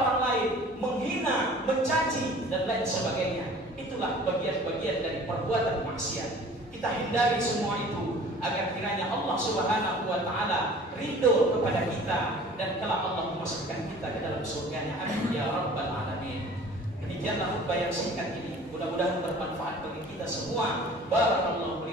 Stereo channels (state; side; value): normal; both; correlation 0.47